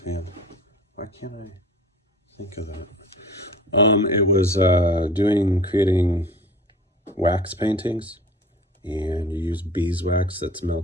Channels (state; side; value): normal; both; correlation 0.43